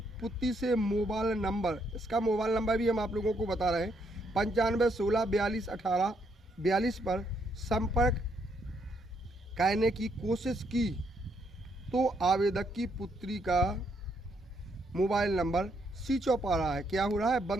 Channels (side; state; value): both; normal; correlation 0.74